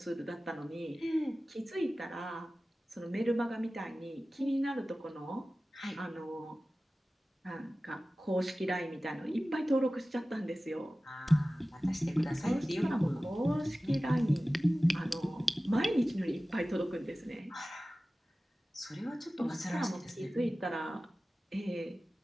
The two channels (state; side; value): normal; both; correlation 0.96